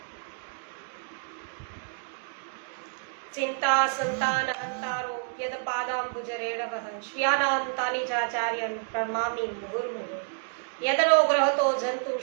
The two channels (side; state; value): left; silent; 59 dB below the other